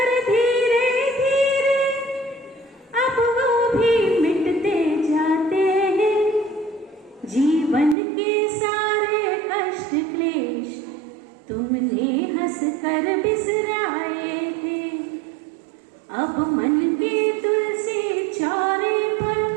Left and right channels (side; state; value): left; drops out; at 8.0 s